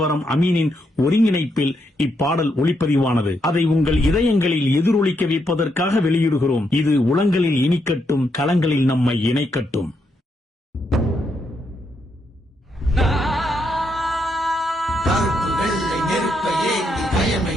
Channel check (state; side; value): normal; both; correlation 0.79